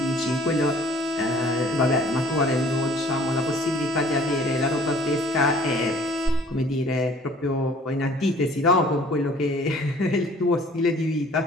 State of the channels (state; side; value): normal; both; correlation 0.53